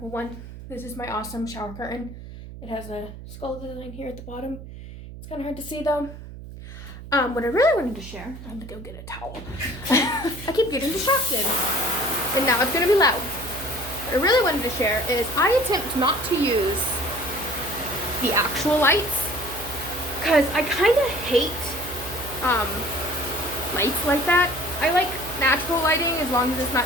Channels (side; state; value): right; noise; hum, 13 dB below the sound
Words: one, this is my awesome shower curtain. It has a skull design here at the bottom. It's kind of hard to see though. What I really wanted to share, I have to go get a towel. I keep getting distracted. And now it's gonna be loud. What I really wanted to share is I attempt not to use the actual lights because I kind of hate lights like that. I like natural lighting as long as it's